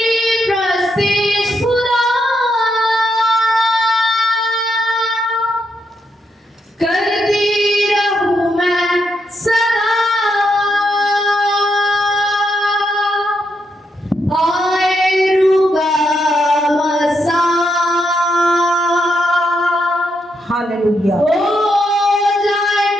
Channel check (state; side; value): normal; both; correlation 0.81